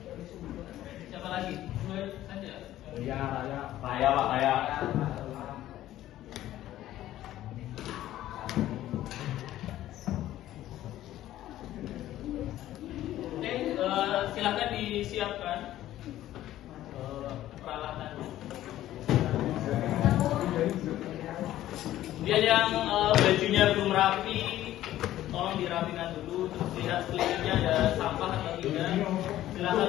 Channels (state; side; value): quieter; right; 13.7 dB